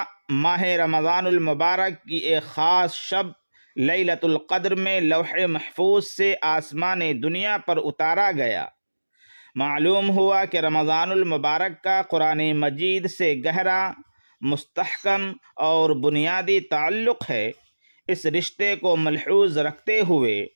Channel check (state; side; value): inverted; both; correlation -1.00